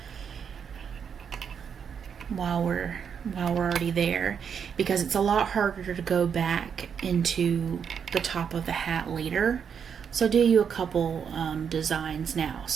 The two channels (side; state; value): left; quieter; 7.2 dB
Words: while we're already there, because it's a lot harder to go back into the top of the hat later. So do you a couple designs now,